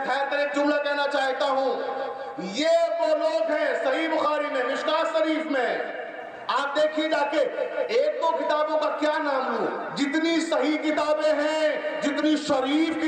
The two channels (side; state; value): both; identical; correlation 1.00